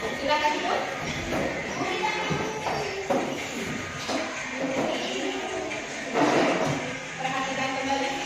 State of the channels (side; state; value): both; identical; correlation 1.00